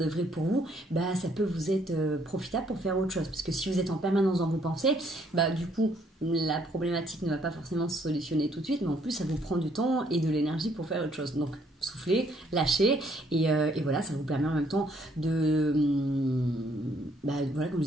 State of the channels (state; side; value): normal; both; correlation 0.67